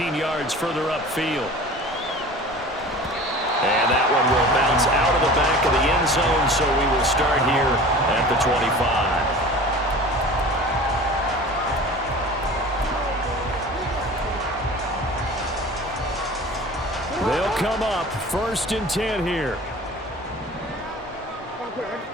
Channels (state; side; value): normal; both; correlation 0.40